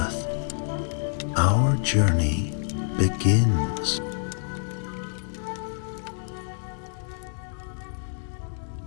Our journey begins.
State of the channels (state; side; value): silent; right; 60 dB below the other